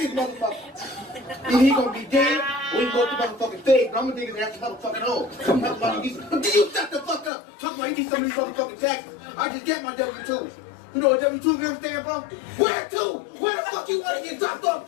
motherfucker. Either he gonna be dead, or he go to motherfucking feds, but I'm gonna dig his ass a motherfucking hole. Talking about he needs, but you shut the fuck up. Talking about he needs some of these motherfucking taxes. I just got my W-2s. You know what W-2s ever stand for? Where to? Where the fuck you wanna get dropped off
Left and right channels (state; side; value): drops out; right; at 7.3 s